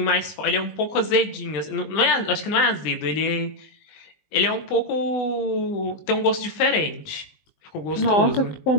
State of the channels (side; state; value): right; late; 19 ms